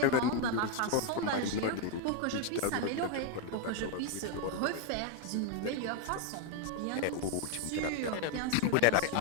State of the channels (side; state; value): both; different; correlation 0.01